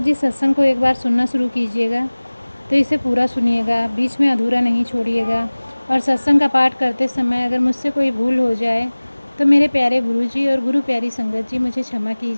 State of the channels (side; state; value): both; inverted; correlation -1.00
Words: जी, सत्संग को एक बार सुनना शुरू कीजिएगा तो इसे पूरा सुनिएगा, बीच में अधूरा नहीं छोड़िएगा। और सत्संग का पाठ करते समय अगर मुझसे कोई भूल हो जाए तो मेरे प्यारे गुरु जी और गुरु प्यारी संगत जी मुझे क्षमा